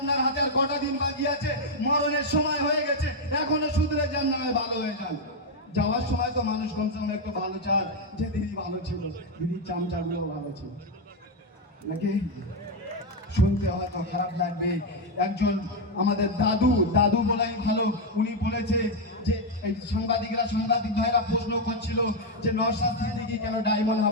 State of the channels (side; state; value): both; normal; correlation 0.03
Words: হাতে আর কটা দিন বাকি আছে, মরণের সময় হয়ে গেছে, এখনো শুধরে যান, না ভালো হয়ে যান। যাওয়ার সময় তো মানুষ কমসে কম একটু ভালো চান যে দিদি ভালো ছিল, দিদির চামচাগুলো ভালো ছিল নাকি। শুনতে হয়তো খারাপ লাগবে, একজন আমাদের দাদু বলাই ভালো, উনি বলেছে যে এই সাংবাদিক ভাইরা প্রশ্ন করছিল যে নওশাদ সিদ্দিকী কেন ডায়মন্ড